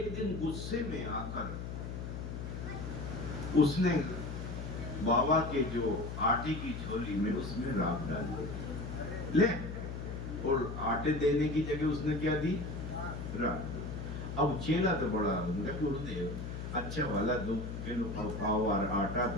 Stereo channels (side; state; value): left; noise; hum, 6 dB below the sound